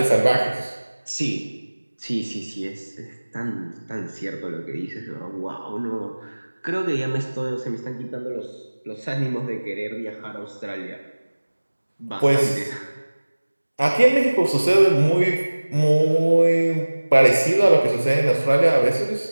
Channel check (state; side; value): inverted; both; correlation -1.00